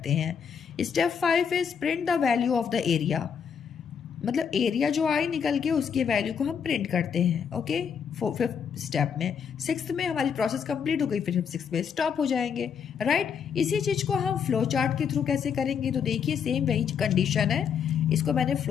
हैं। Step 5 is print the value of the area. मतलब एरिया जो आए निकल के उसके वैल्यू को हम प्रिंट करते हैं। ओके, फिफ्थ स्टेप में, सिक्स्थ में हमारी प्रोसेस कंप्लीट हो गई, फिर हम सिक्स्थ में स्टॉप हो जाएंगे। राइट, इसी चीज़ को हम फ्लो चार्ट के थ्रू कैसे करेंगे, तो देखिए सेम वही कंडीशन है, इसको मैंने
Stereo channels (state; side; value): quieter; right; 7.1 dB